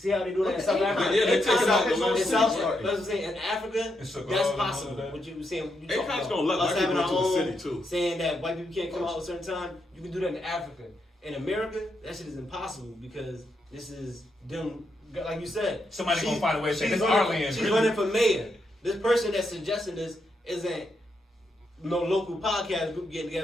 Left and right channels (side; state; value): both; normal; correlation 0.81